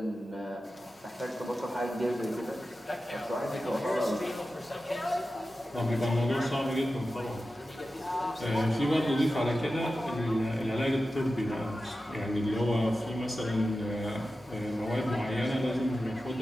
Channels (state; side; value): normal; both; correlation 0.93